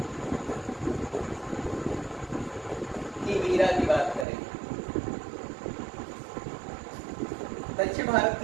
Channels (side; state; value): left; drops out; at 4.2 s